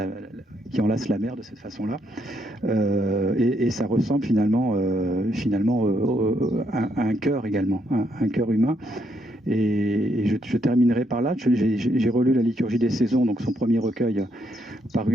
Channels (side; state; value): both; normal; correlation 0.75